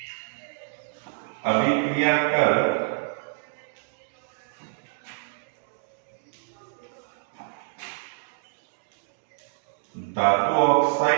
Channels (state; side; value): silent; left; digital silence